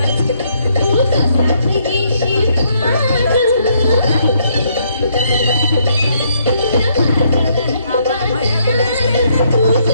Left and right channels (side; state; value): both; inverted; correlation -0.71